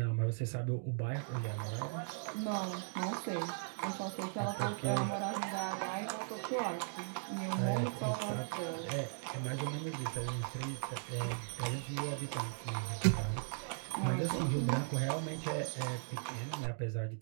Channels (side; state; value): left; silent; digital silence